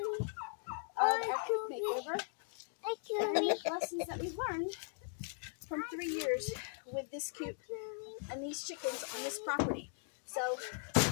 of our Coop makeover. And lessons that we've learned from 3 years with this Coop and these chickens on this property. So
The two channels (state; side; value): silent; right; 52 dB below the other